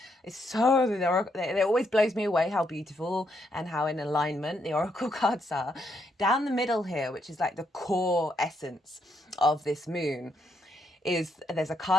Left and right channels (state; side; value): normal; both; correlation 0.77